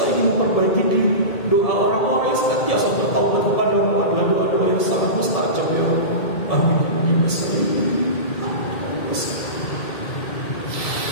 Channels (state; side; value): late; right; 2.2 ms